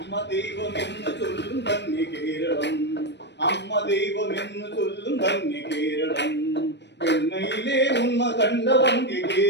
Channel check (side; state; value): right; late; 0.50 ms